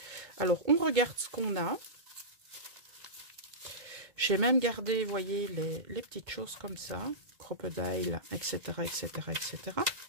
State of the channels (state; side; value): late; left; 2.2 ms